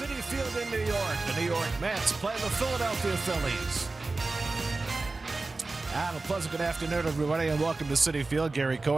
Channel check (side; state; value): left; quieter; 3.5 dB